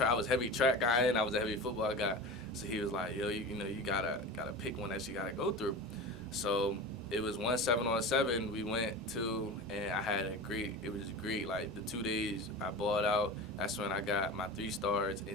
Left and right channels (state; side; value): normal; both; correlation 0.30